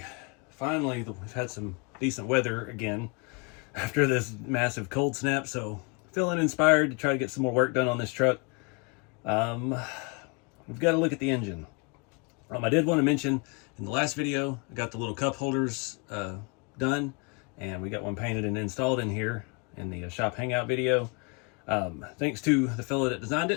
Finally, we've had some decent weather again after this massive cold snap, so feeling inspired to try to get some more work done on this truck. We've got to look at the engine. I did want to mention in the last video, I got the little cup holders done, and we got one painted and installed in here in the shop hangout video. Thanks to the fellow that designed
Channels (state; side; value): quieter; right; 32.0 dB